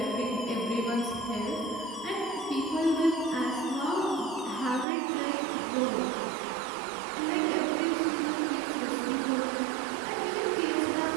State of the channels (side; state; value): left; drops out; at 4.9 s